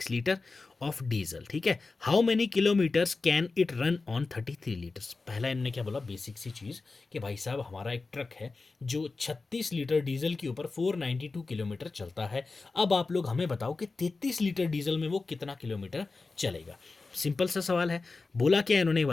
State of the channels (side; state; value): right; quieter; 3.9 dB